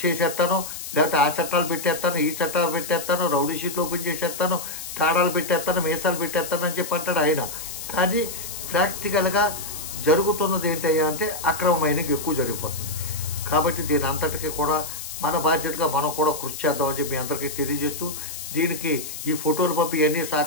చేసేస్తాను, లేకపోతే ఆ చట్టాలు పెట్టేస్తాను, ఈ చట్టాలు పెట్టేస్తాను, రౌడీ షీట్లు ఓపెన్ చేసేస్తాను, తాడాలు పెట్టేస్తాను, మీసాలు పెట్టేస్తాను అని చెప్పి అంటాడు ఆయన. కానీ ప్రాక్టికల్గా జరుగుతున్నది ఏంటయ్యా అంటే అక్రమ మైనింగ్ ఎక్కువ జరిగిపోతుంది. కాబట్టి దీని అంతటికీ కూడా మన బాధ్యతగా మనం కూడా కృషి చేద్దామని చెప్పి మీ అందరికీ తెలియజేస్తూ, దీనికి ఈ ఫోటోలు పంపి ఇవన్నీ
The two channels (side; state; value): left; noise; hiss, 8 dB below the sound